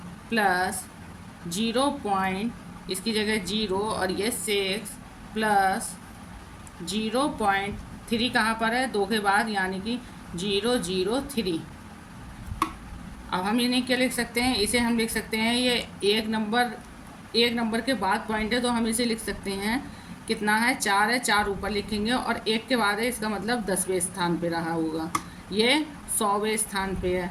प्लस 0. इसकी जगह 0 और ये 6 प्लस 0.3 कहाँ पर है, 2 के बाद, यानी कि 003। अब हम इन्हें क्या लिख सकते हैं, इसे हम लिख सकते हैं, ये एक नंबर के बाद पॉइंट है, तो हम इसे लिख सकते हैं कितना है, 4 है, 4 ऊपर लिखेंगे और 1 के बाद है, इसका मतलब 10वें स्थान पे रहा होगा। ये 100वें स्थान पे है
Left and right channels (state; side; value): identical; both; correlation 1.00